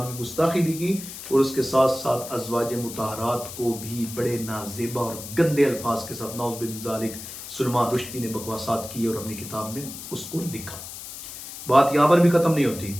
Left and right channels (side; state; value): left; noise; hiss, 11 dB below the sound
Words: کی گستاخی بھی کی، اور اس کے ساتھ ساتھ ازواج مطہرات کو بھی بڑے نازیبا اور گندے الفاظ کے ساتھ نعوذ باللہ من ذالک سلمان رشدی نے بکواسات کی اور اپنی کتاب میں اس کو لکھا۔ بات یہاں پر بھی ختم نہیں ہوتی۔